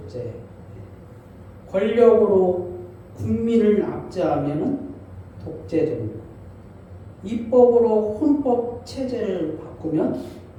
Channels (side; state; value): both; identical; correlation 1.00